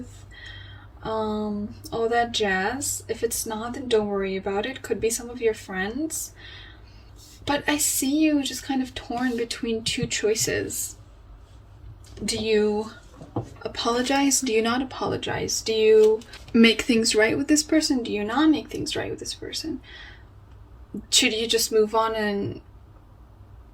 all that jazz. If it's not, then don't worry about it. Could be some of your friends. But I see you just kind of torn between 2 choices. Do you apologize? Do you not apologize? Do you make things right with this person? Do you not make things right with this person? Should you just move on and,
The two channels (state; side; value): identical; both; correlation 1.00